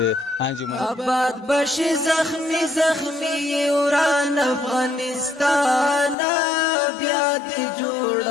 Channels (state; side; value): drops out; right; at 6.2 s